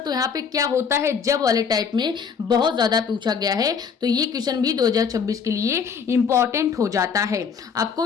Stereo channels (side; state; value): right; quieter; 6.3 dB